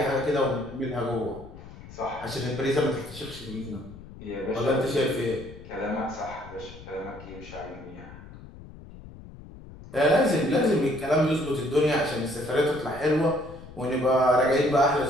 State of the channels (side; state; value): left; noise; rumble, 16 dB below the sound